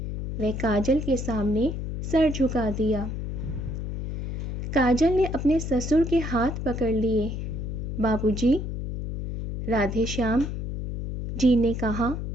वह काजल के सामने सर झुका दिया। काजल ने अपने ससुर के हाथ पकड़ लिए। बाबूजी, राधेश्याम जी ने कहा।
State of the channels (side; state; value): left; noise; hum, 5 dB below the sound